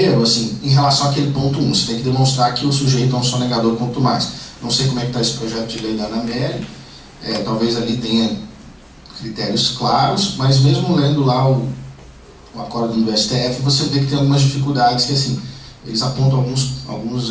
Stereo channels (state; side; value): identical; both; correlation 1.00